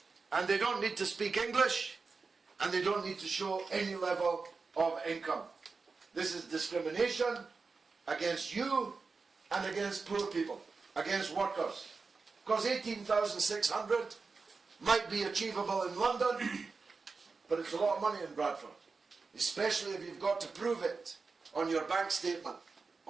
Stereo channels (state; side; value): quieter; left; 4.5 dB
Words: and they don't need to speak English and they don't need to show any level of income. This is discrimination against you and against poor people, against workers. Because 18,600 might be achievable in London, but it's a lot of money in Bradford, especially if you've got to prove it on your bank statement,